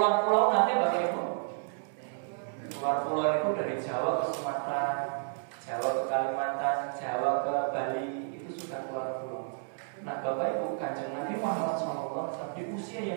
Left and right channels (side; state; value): left; silent; digital silence